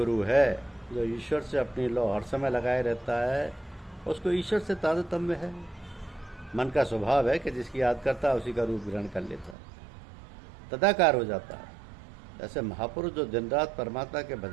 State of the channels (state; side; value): drops out; left; at 9.6 s